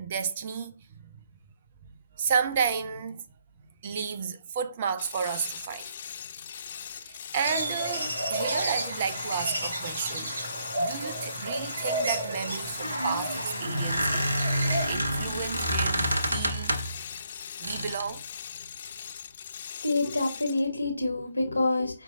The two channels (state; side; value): inverted; both; correlation -0.73